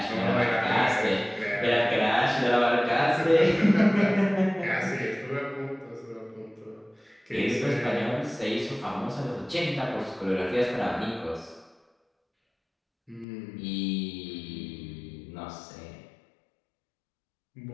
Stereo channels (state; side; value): drops out; right; at 13.2 s